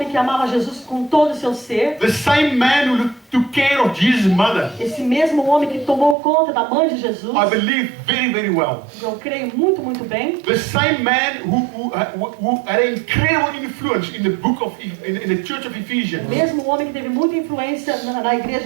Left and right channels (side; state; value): left; drops out; at 6.2 s